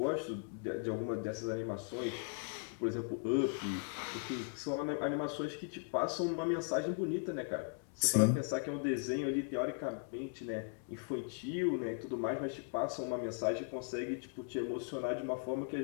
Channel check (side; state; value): right; silent; 52 dB below the other